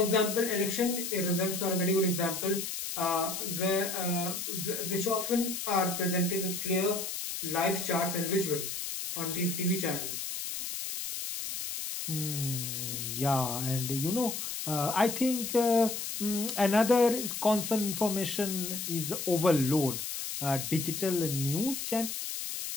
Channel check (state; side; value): noise; left; hiss, 5 dB below the sound